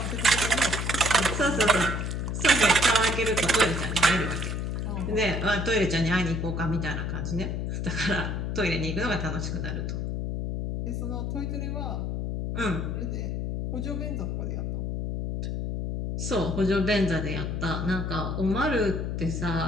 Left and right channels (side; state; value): left; noise; hum, 2 dB below the sound